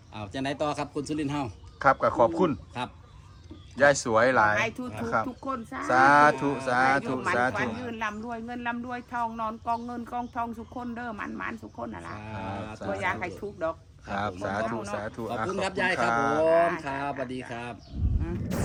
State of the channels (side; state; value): both; identical; correlation 1.00